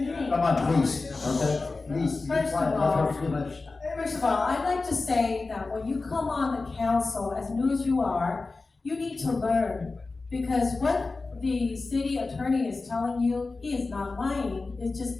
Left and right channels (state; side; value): quieter; right; 3.7 dB